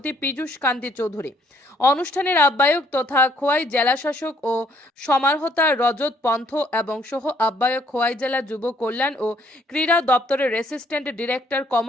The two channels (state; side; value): normal; both; correlation 0.65